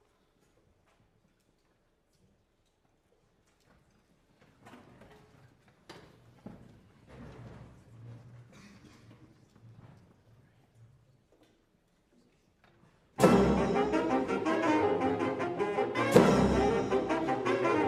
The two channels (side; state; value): both; identical; correlation 1.00